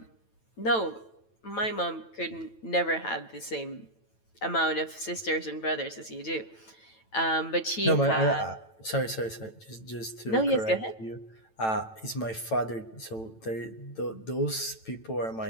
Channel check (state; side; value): late; right; 9.0 ms